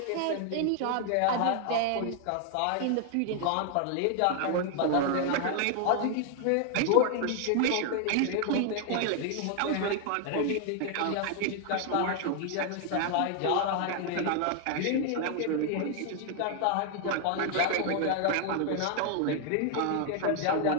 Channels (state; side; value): different; both; correlation 0.00